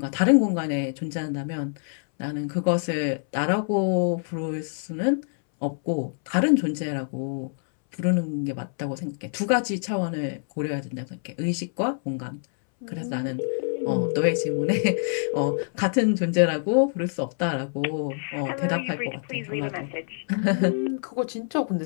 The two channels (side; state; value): right; silent; 61 dB below the other